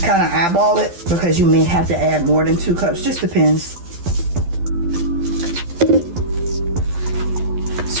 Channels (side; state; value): left; late; 12 ms